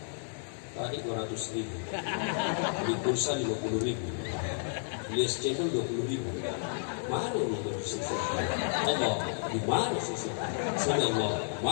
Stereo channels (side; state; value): right; silent; digital silence